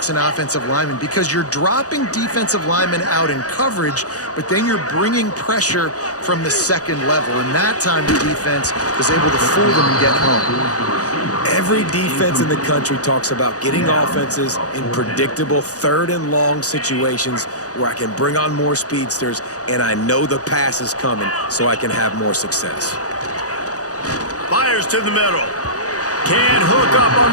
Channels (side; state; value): right; late; 0.67 ms